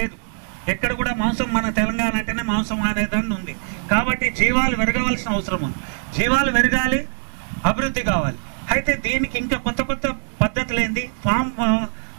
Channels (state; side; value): silent; left; 64 dB below the other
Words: ఎక్కడ కూడా మాంసం, మన తెలంగాణ అంటేనే మాంసం అనేదాన్ని ఉంది. కాబట్టి జీవాలు పెరగవలసిన అవసరం ఉంది. జీవాలు పెరగాలి, అభివృద్ధి కావాలి. అయితే దీనికి ఇంకా కొత్త కొత్త పద్ధతులు ఏంది,